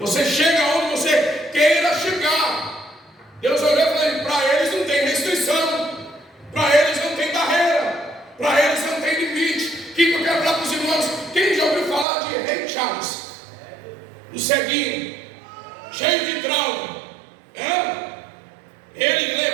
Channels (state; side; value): drops out; left; at 12.1 s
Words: chega onde você queira chegar. Deus olhou e falou: para eles não tem restrição, para eles não tem ceguinho, cheio de trauma. Ele